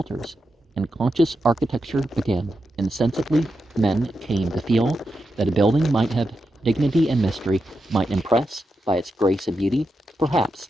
and conscious architecture began. Insensibly, men came to feel that a building might have dignity and mystery, might impress by its grace and beauty. Perhaps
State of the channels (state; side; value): normal; both; correlation 0.87